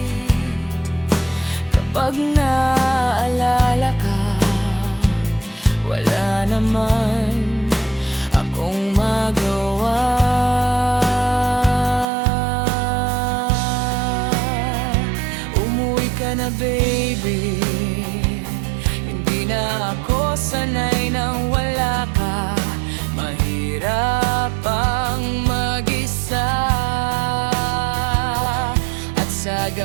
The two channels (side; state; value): left; drops out; at 12.1 s